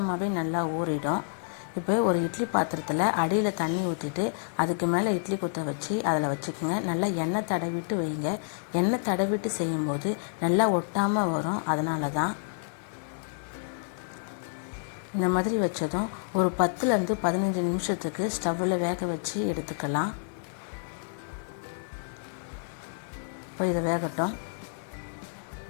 நல்லா ஊறிடும். இப்போ ஒரு இட்லி பாத்திரத்தில் அடியில் தண்ணி ஊற்றிட்டு அதுக்கு மேலே இட்லி குத்த வச்சு அதில் வச்சுக்கோங்க. நல்லா எண்ணெய் தடவிட்டு வைங்க. எண்ணெய் தடவிட்டு செய்யும்போது நல்லா ஒட்டாமல் வரும். அதனால தான் இந்த மாதிரி வச்சதும் ஒரு 10 to 15 நிமிஷத்துக்கு ஸ்டவ்வில் வேக வச்சு எடுத்துக்கலாம். இப்போ இதை வேகட்டும்.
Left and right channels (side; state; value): right; silent; digital silence